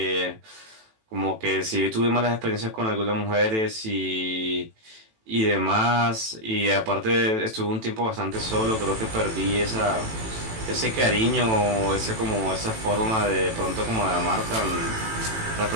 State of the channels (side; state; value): left; late; 18 ms